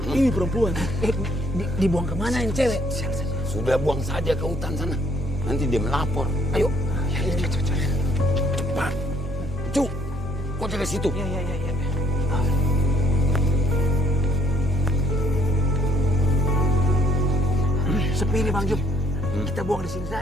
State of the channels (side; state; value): both; normal; correlation 0.66